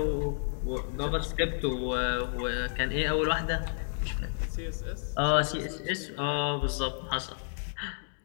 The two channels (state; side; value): silent; right; digital silence